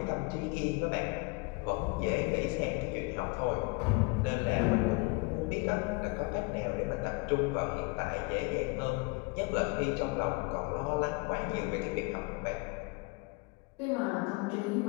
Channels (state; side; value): quieter; right; 27.9 dB